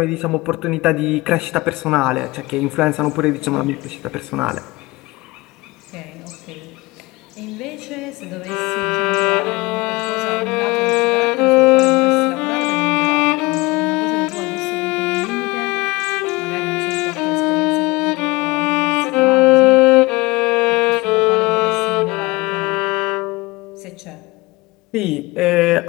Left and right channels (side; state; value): right; quieter; 22.8 dB